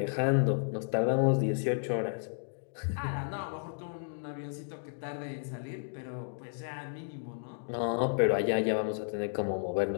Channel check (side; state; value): right; silent; digital silence